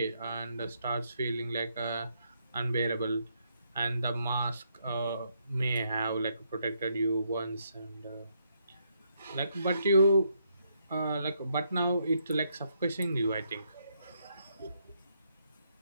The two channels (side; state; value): both; inverted; correlation -0.76